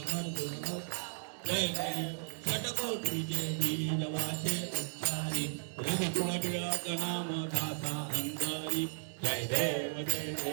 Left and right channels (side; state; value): left; silent; 54 dB below the other